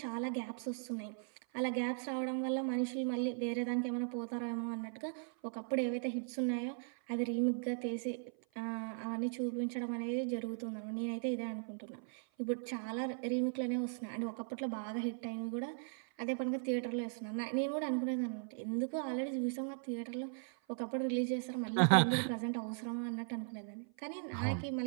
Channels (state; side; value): silent; left; 52 dB below the other